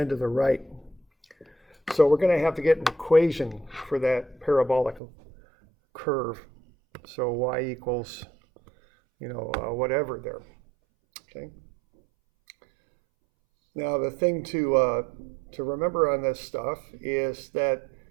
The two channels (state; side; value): drops out; left; at 5.0 s